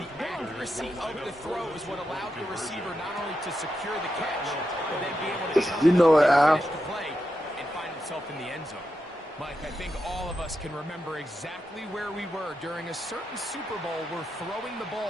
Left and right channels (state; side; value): normal; both; correlation 0.87